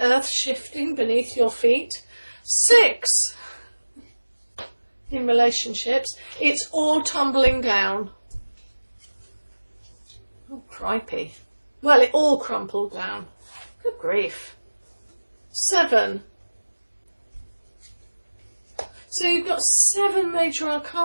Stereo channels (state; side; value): inverted; both; correlation -1.00